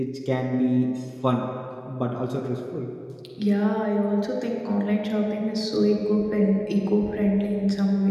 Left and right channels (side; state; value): both; identical; correlation 1.00